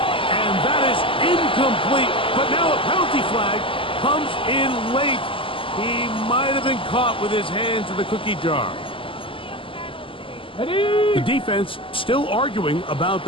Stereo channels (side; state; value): right; late; 0.25 ms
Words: And that is incomplete, but now a penalty flag comes in late. He might have been caught with his hands in the cookie jar. Ready? The defense still arguing about